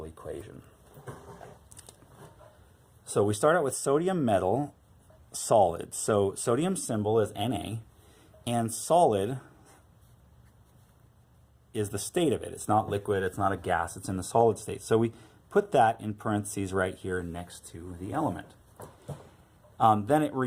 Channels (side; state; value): both; identical; correlation 1.00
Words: equation. So we start out with sodium metal solid. So sodium symbol is Na, and solid is the state of it. It's not liquid, it's not a gas, it's in the solid state. So we put that in parentheses right here next to the element. Then it